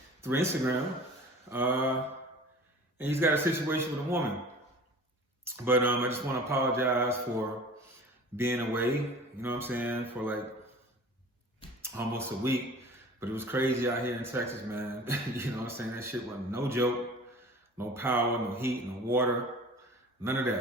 Instagram, and he's got a situation with a woman. But I just want to apologize for being away, you know what I'm saying, for like almost a week. But it was crazy out here in Texas, man. You know what I'm saying? That shit wasn't no joke. No power, no heat, no water, none of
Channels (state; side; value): normal; both; correlation 0.42